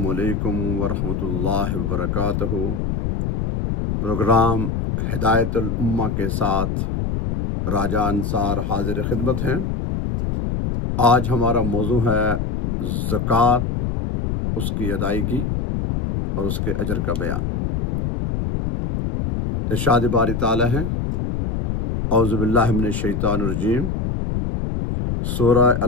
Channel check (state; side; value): noise; left; rumble, 1 dB below the sound